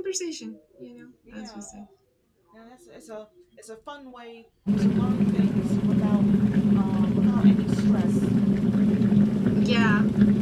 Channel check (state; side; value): identical; both; correlation 1.00